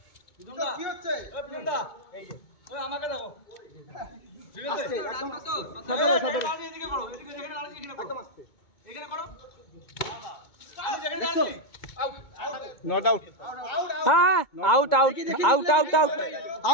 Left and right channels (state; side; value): late; right; 2.2 ms